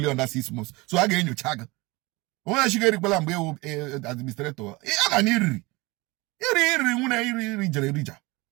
under 6 months. So a ga-enyocha gị. Onye shiga erikwela mgbe ewu administrator. Ama na iri nwune iri jere erija.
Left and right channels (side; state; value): left; quieter; 23.6 dB